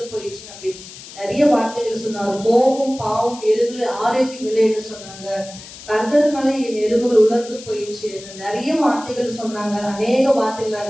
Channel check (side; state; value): left; noise; hiss, 16 dB below the sound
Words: போயிடுச்சு அப்படின்னு நிறைய வார்த்தைகள் சொன்னார். கோபம், பாவம், எலும்புல ஆரோக்கியம் இல்லைன்னு சொன்னாங்க. கர்த்தர்னால என் எலும்புகள் உலர்ந்து போயிடுச்சு, நிறைய வார்த்தைகள் சொன்னாங்க. அநேக வார்த்தைகள்